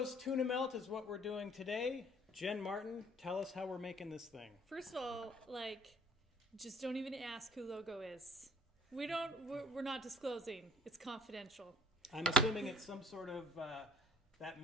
Tuna Melt is what we're doing today. Jen Martin, tell us how we're making this thing. First of all, just don't even ask who Logo is. We're not disclosing. It's confidential. I'm assuming it's some sort of, that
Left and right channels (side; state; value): both; normal; correlation 0.56